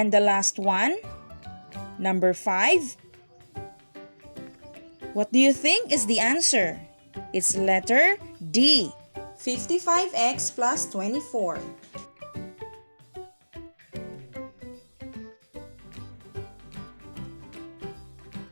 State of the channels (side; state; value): both; inverted; correlation -1.00